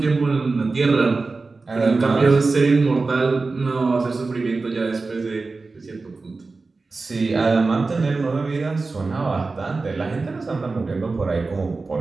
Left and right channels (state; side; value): quieter; left; 3.8 dB